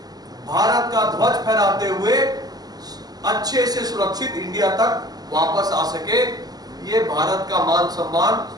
का ध्वज फहराते हुए अच्छे से सुरक्षित इंडिया तक वापस आ सके। ये भारत का मान सम्मान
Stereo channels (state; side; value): late; left; 0.19 ms